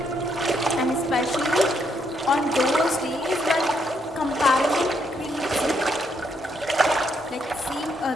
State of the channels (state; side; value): normal; both; correlation 0.75